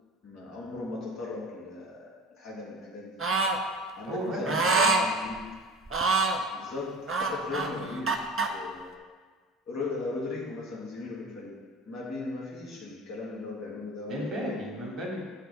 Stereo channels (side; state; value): both; normal; correlation 0.37